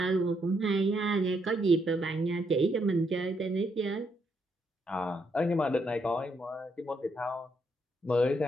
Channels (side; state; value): both; normal; correlation 0.76